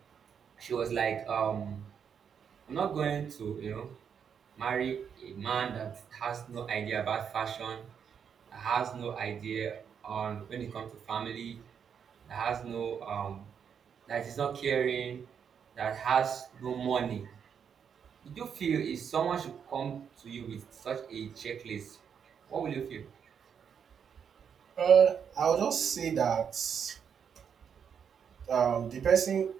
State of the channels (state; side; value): quieter; left; 7.4 dB